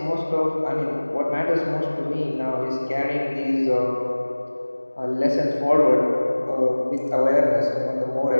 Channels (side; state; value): both; inverted; correlation -1.00